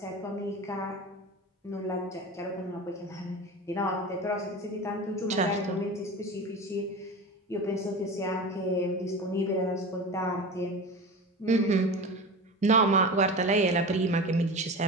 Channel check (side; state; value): both; normal; correlation 0.30